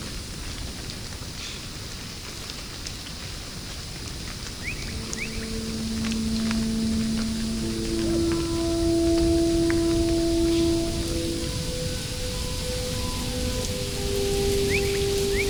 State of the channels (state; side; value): noise; left; hiss, 20 dB below the sound